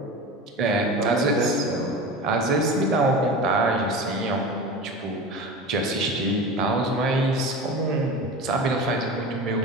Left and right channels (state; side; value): normal; both; correlation 0.31